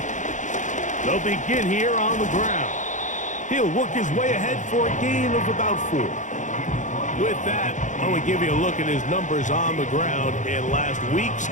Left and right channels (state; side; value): late; right; 0.36 ms